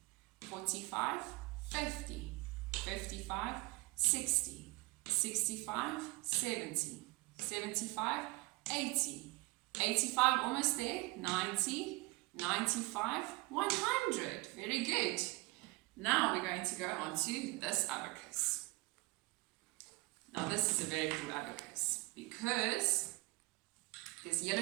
45, 50, 55, 60, 65, 70, 75, 80, 85, almost there, 90, 95, 100. Very good. Now we're going to go on to this abacus. Now this is a very cool abacus because there's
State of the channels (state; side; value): quieter; left; 23.3 dB